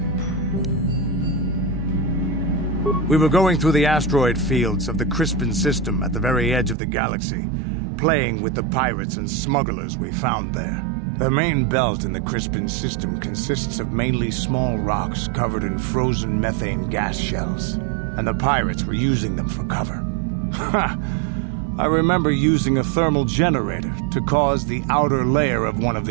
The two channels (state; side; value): drops out; left; at 6.8 s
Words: We were going through the asteroid fields of the Crispin system at the very edge of the galaxy, playing with the pirates and smugglers we found there. The main belt in the Crispin system consists of mainly small rocks covered in frozen methane gas shells, and the pirates were using them for cover. Ha! I remember using a thermal generator to cause the outer layer of one of